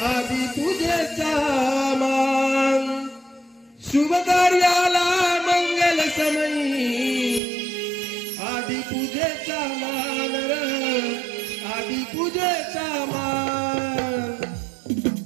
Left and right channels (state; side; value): drops out; left; at 7.4 s